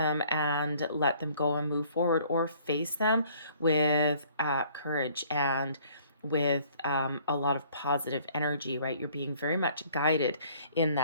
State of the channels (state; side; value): inverted; both; correlation -0.58